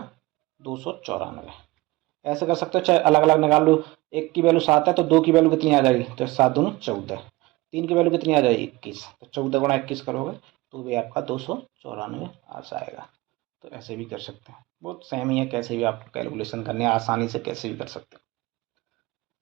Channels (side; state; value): left; quieter; 21.0 dB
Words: 294। ऐसे कर सकते हो, चाहे अलग अलग निकाल लो। एक की वैल्यू 7 है तो 2 की वैल्यू कितनी आ जाएगी, तो 7 दूनी 14। 3 की वैल्यू कितनी आ जाएगी 21, तो 14 × 21 करोगे तो भी आपका 294 आ जाएगा। तो ऐसे भी कर सकते हैं, बहुत सेम ही है, कैसे भी आपको कैलकुलेशन करनी है आसानी से कैसे भी कर सकते हैं।